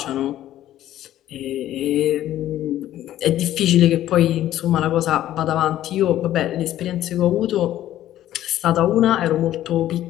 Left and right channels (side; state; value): right; quieter; 13.0 dB